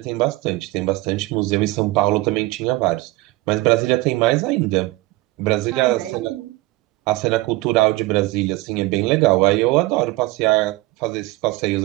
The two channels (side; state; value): left; quieter; 20.2 dB